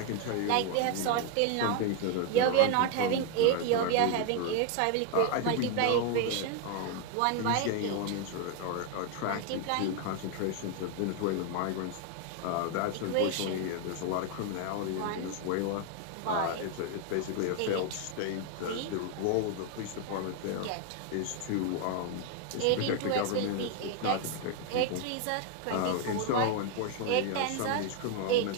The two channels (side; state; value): both; different; correlation 0.01